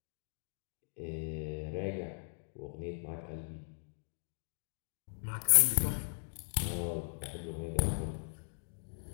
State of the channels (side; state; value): right; silent; digital silence